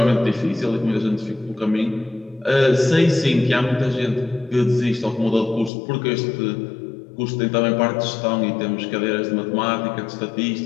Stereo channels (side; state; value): right; drops out; at 5.7 s